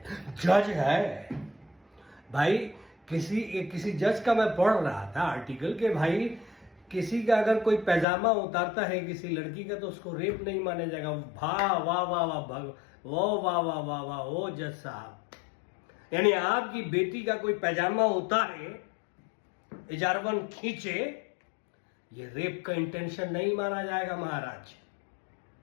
जज है. भाई किसी जज का मैं पढ़ रहा था आर्टिकल के, भाई किसी का अगर कोई पैजामा उतारता है किसी लड़की का, तो उसको रेप नहीं माना जाएगा. वाह वाह वाह वाह, वाह वाह वाह वाह, ओ जज साहब. यानी आपकी बेटी का कोई पैजामा उतारे, इजारवन खींचे, ये रेप का इंटेंशन नहीं माना जाएगा महाराज.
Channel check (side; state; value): right; drops out; at 8.1 s